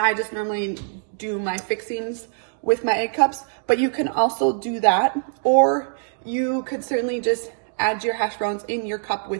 I just normally do my fixings with my egg cups, but you can also do that, or you could certainly just add your hash browns in your cup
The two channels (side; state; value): left; silent; digital silence